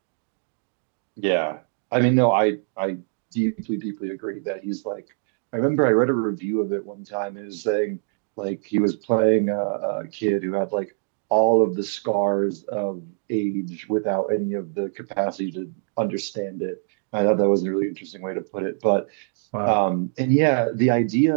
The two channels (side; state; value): left; silent; digital silence